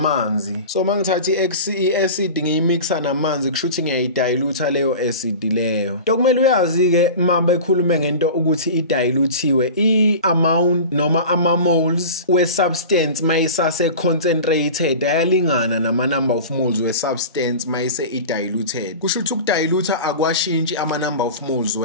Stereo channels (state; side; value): inverted; both; correlation -0.34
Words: So mangithatha I acid ngiyimixa namanzi kusho ukuthi ngiyayidilute leyo acid leyo. Dokumele uyazi ke mamba ekhulume ngento ukuthi idilutiwe I amount noma ama moles we substance mayisase concentrated ayalingana nama number of moles we substance mayise idiluted. Kusho ukuthi ukudilute akwashintshi ama number of moles